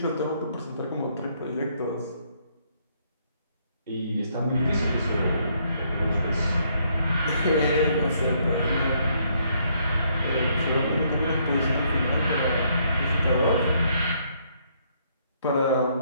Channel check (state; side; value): inverted; both; correlation -0.70